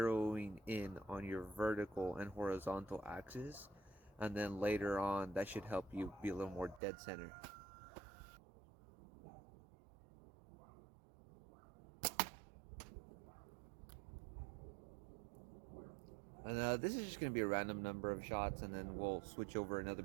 in on your vertical and horizontal axis, and then later on that should help you be a little more dead center. And this is just going to be a random number of shots, and then we'll switch over another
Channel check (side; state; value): left; drops out; at 6.8 s